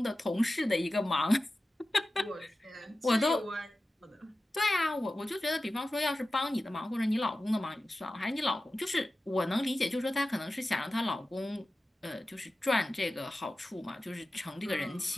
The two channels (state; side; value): normal; both; correlation 0.94